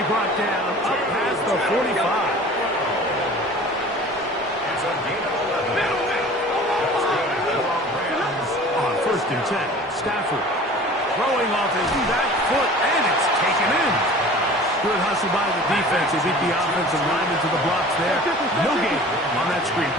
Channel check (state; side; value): normal; both; correlation 0.43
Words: brought down up past the 45. It's a gain of 11. On 1st and 10, Stafford throwing off his back foot, and it's taken in. Good hustle by the defense. They beat the offensive lineman to the blocks there. No gain on that screen